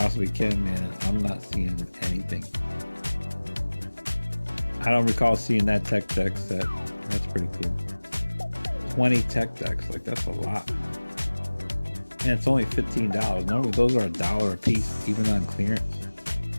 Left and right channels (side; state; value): both; inverted; correlation -1.00